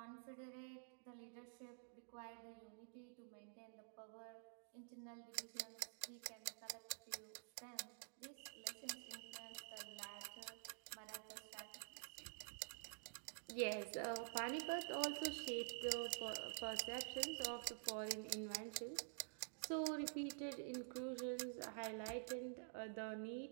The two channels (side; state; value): left; silent; digital silence